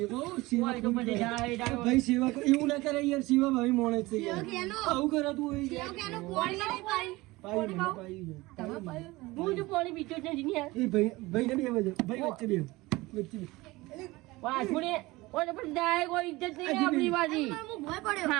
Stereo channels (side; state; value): left; quieter; 20.8 dB